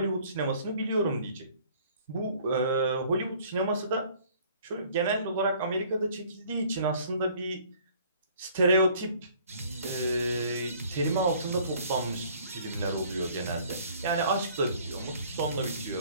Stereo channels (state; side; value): inverted; both; correlation -0.56